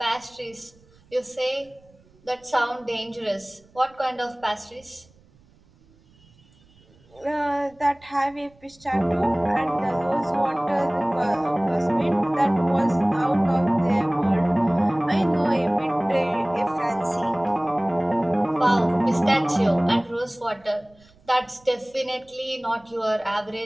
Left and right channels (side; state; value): right; noise; rumble, 30 dB below the sound